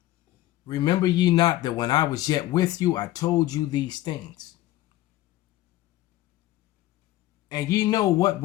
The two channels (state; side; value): quieter; right; 15.7 dB